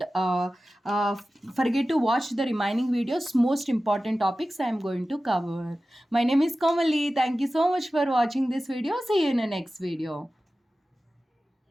forget to watch the remaining videos. Most important topics I am going to cover. My name is Kamali. Thank you so much for watching this video. See you in the next video.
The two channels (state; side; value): normal; both; correlation 0.95